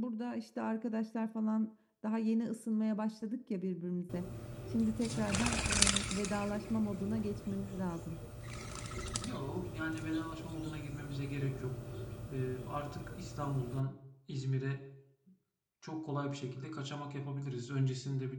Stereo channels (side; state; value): both; identical; correlation 1.00